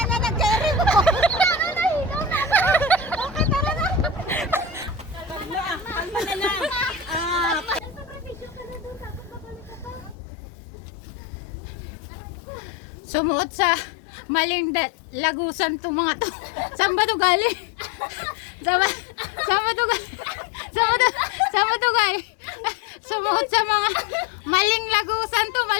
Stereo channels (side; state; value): right; drops out; at 10.2 s